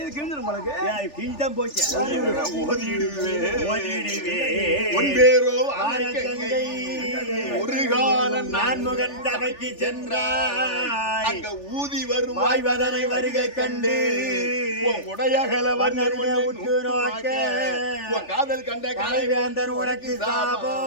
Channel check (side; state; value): right; late; 3.4 ms